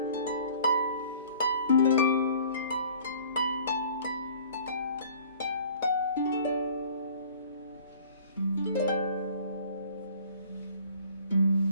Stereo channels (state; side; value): inverted; both; correlation -0.51